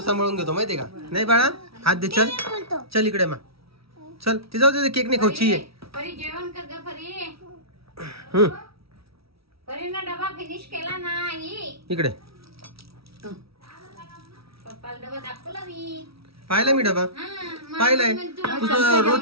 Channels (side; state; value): left; late; 0.76 ms